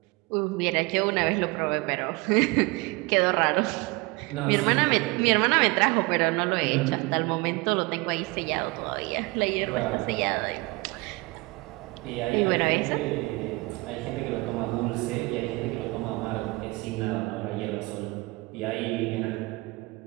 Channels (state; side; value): quieter; left; 24.5 dB